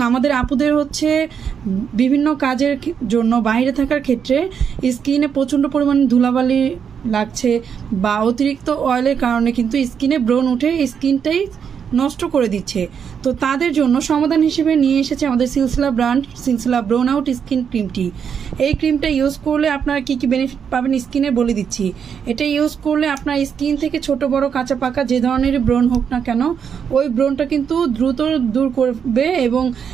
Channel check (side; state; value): left; quieter; 7.3 dB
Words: আমাদের আপুদের হচ্ছে বিভিন্ন কাজের জন্য বাইরে থাকার ক্ষেত্রে স্কিনে প্রচণ্ড পরিমাণে ধুলাবালি লাগছে বা অতিরিক্ত অয়েলের কারণে কিন্তু স্কিনে ব্রণ উঠে স্কিনটাই নষ্ট করে দিচ্ছে। তো তাদের জন্য সমাধান হিসেবে নিয়ে এসেছে আমাদের সিলসিলা ব্র্যান্ড সিলসিলা ব্রোন আউট স্কিন ক্রিমটি। এই ক্রিমটা ইউজ করলে আপনারা কী কী বেনিফিট পাবেন স্কিনে বলে দিচ্ছি। এটা ইউজ করলে আপনার স্কিন থেকে ছোট বড় কাঁচা পাকা যে ধরনের ব্রণ হোক না কেন, ওই ব্রণটা কিন্তু দ্রুত দূর করবে এবং